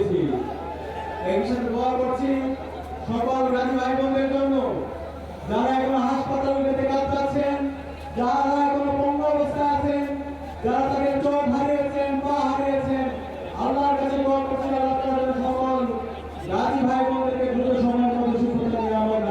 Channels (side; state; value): both; identical; correlation 1.00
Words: এই সাথে দোয়া করছি সকল গাজী ভাই বোনদের জন্য, যারা এখনো হাসপাতালে কাজ পাচ্ছেন, যারা এখনো পঙ্গু অবস্থায় আছেন, যারা তাদের চোখ হারিয়েছেন, পা হারিয়েছেন। আল্লাহর কাছে দোয়া করছি আল্লাহ তাআলা সকল গাজী ভাই বোনদেরকে দ্রুত সময়ের মধ্যে সুস্থতা নিরাময়